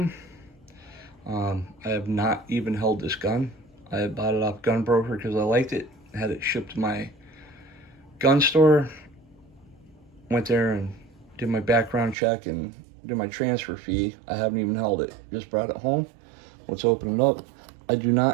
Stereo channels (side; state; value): left; drops out; at 12.2 s